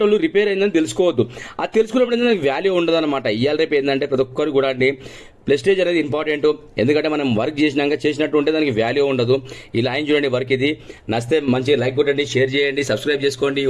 రిపేర్ అయిందని తెలుసుకోవద్దు, అది తెలుసుకున్నప్పుడు ఏంటంటే వాల్యూ ఉండదు అనమాట. ఇవాళ రేపు ఏంటంటే ప్రతి ఒక్కరు కూడా అండి ప్రెస్టేజ్ అనేది ఇంపార్టెంట్, ఎందుకంటే మనం వర్క్ చేసినట్టు ఉంటే దానికి వాల్యూ ఉండదు. ఇలా ఆయన చూడండి వర్క్, ఇది నచ్చితే మంచిగా లైక్ కొట్టండి, షేర్ చేయండి, సబ్స్క్రైబ్ చేసుకోండి.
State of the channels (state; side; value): identical; both; correlation 1.00